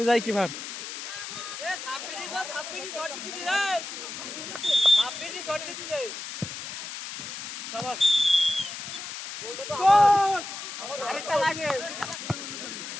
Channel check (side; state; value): left; noise; hiss, 8 dB below the sound